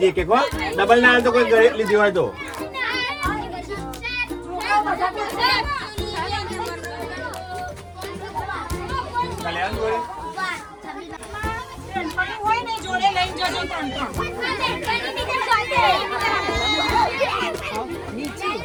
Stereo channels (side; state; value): both; identical; correlation 1.00